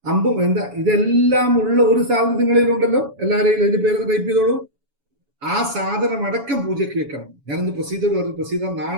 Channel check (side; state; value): left; late; 7.1 ms